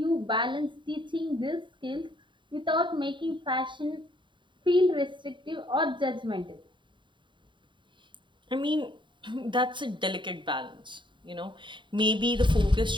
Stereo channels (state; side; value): late; left; 0.23 ms